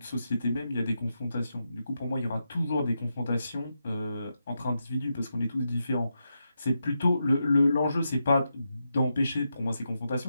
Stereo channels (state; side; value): inverted; both; correlation -0.86